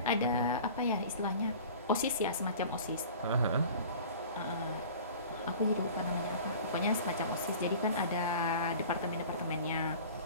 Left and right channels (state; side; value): inverted; both; correlation -0.42